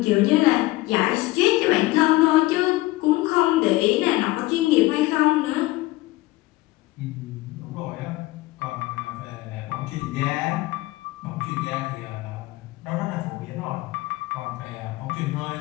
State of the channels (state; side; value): quieter; right; 19.1 dB